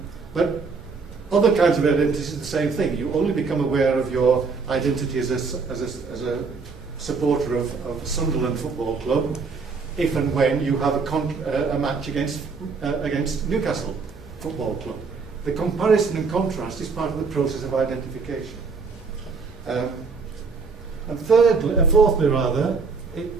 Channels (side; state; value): left; quieter; 4.8 dB